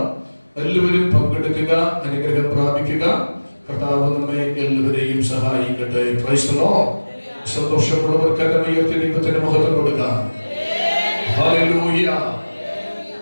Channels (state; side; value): inverted; both; correlation -1.00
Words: എല്ലാവരും പങ്കെടുക്കുക, അനുഗ്രഹം പ്രാപിക്കുക. കർത്താവ് നമ്മെ എല്ലാവരെയും സഹായിക്കട്ടെ. Praise the lord. സന്തോഷമുള്ളവർക്ക് കരമുയർത്തി ദൈവത്തിന് മഹത്വം കൊടുക്കാം. ഹല്ലേലൂയ.